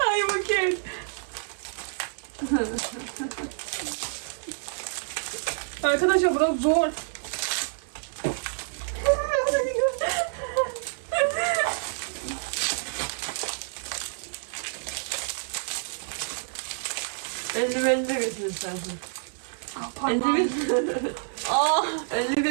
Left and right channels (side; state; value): left; silent; 59 dB below the other